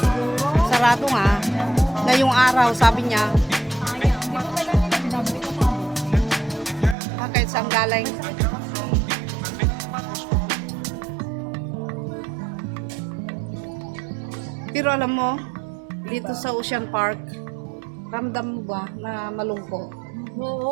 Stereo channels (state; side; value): drops out; left; at 7.0 s